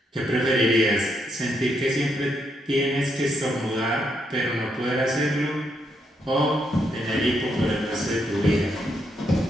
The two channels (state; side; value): normal; both; correlation 0.78